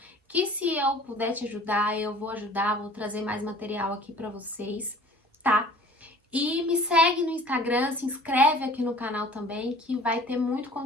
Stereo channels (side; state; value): both; normal; correlation 0.47